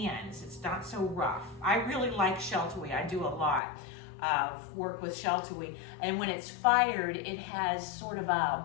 It's not so rough. I really like Sheltawee. I do a lot of work with Sheltawee. And when it's fired, it has sort of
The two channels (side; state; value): right; drops out; at 3.6 s